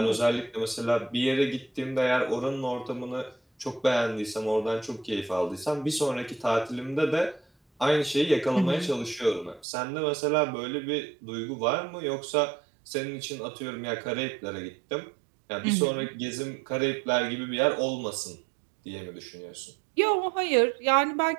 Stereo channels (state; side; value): drops out; left; at 9.7 s